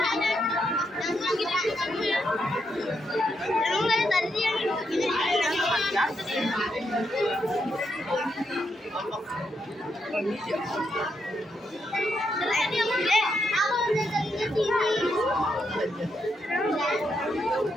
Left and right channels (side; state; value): both; normal; correlation 0.81